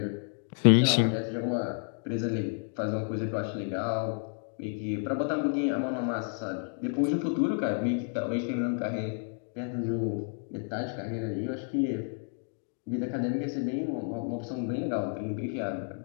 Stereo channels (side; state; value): right; silent; 56 dB below the other